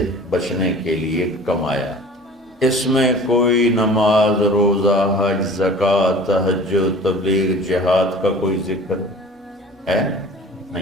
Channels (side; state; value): both; normal; correlation 0.44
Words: بچنے کے لیے کمایا۔ اس میں کوئی نماز، روزہ، حج، زکوٰۃ، تہجد، تبلیغ، جہاد کا کوئی ذکر ہے